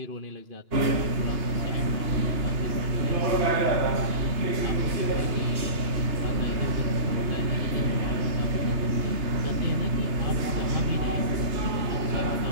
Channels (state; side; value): late; left; 2.9 ms